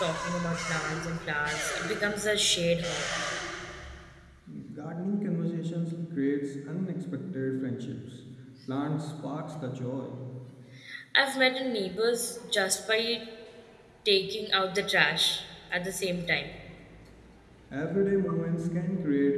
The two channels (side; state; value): both; identical; correlation 1.00